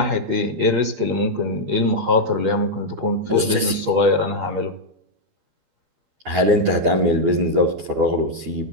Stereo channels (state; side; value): late; left; 12 ms